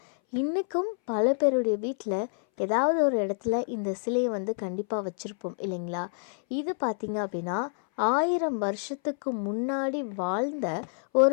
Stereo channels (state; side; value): silent; right; 60 dB below the other